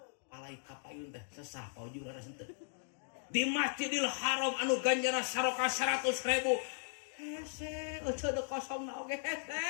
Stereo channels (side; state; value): right; silent; digital silence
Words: palai kapayun teh sesah Pak Uju laras henteu di Masjidil Haram anu ganjana saroka 100.000 hese ojo de kosong na oge hese